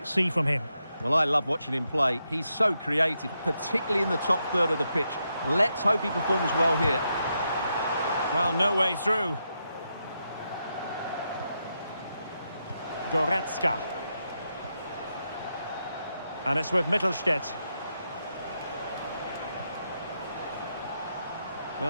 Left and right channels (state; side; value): inverted; both; correlation -0.83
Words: see from him? Well, I love watching him play. He's so creative, particularly in the top third of the pitch. Let's hope he performs well here. Well, no way through. Goretzka. And it's with Mittelstädt.